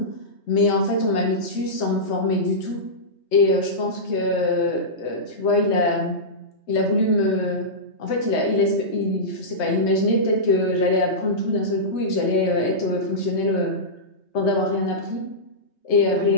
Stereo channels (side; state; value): right; late; 3.2 ms